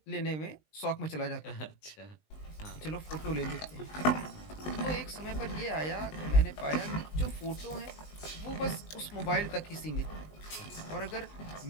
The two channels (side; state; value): right; late; 19 ms